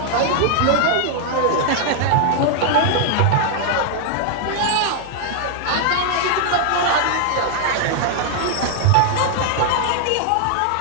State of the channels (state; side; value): different; both; correlation 0.00